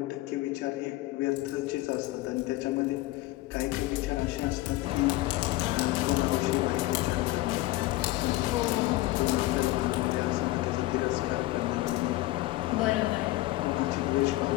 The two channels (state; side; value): quieter; right; 18.2 dB